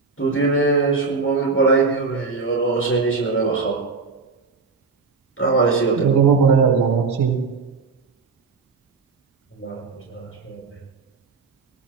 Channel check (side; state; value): left; quieter; 4.5 dB